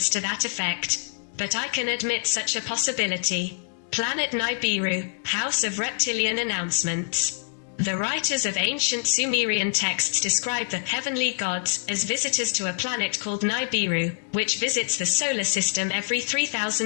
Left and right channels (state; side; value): silent; right; digital silence